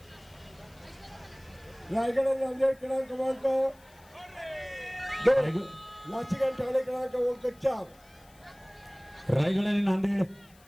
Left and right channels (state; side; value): noise; left; hiss, 28 dB below the sound